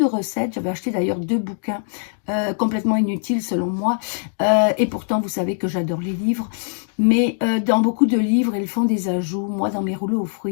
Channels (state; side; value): silent; right; digital silence